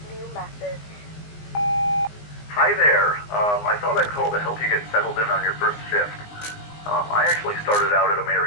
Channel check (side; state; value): right; late; 19 ms